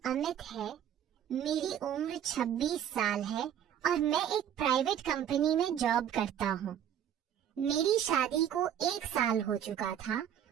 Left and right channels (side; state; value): left; quieter; 9.7 dB